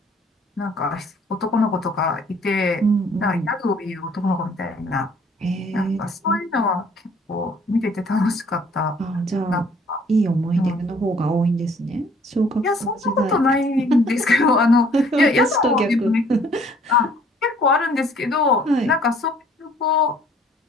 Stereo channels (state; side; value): normal; both; correlation 0.59